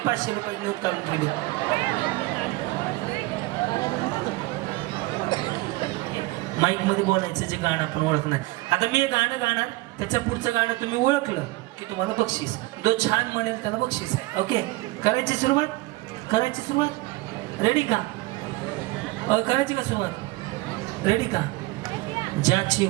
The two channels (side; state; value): left; quieter; 20.6 dB